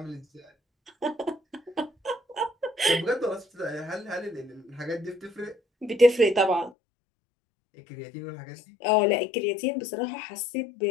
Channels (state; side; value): drops out; right; at 6.7 s